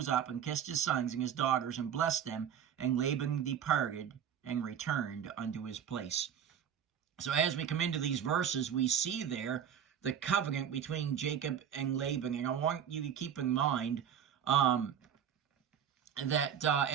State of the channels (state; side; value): quieter; left; 8.7 dB